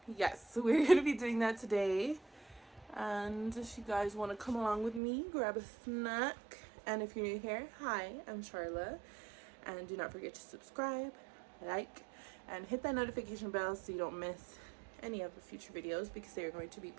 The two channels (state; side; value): drops out; left; at 5.0 s